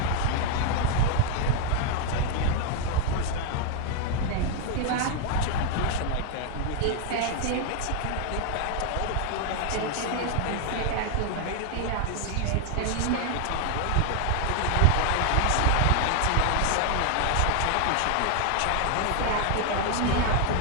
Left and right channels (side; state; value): both; different; correlation 0.00